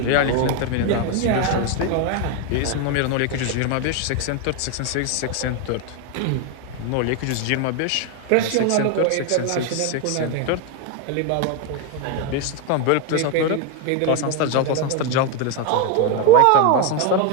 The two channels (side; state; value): both; different; correlation 0.02